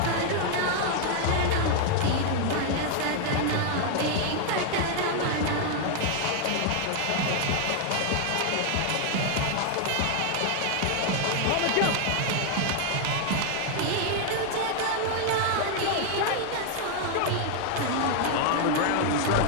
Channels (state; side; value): different; both; correlation 0.00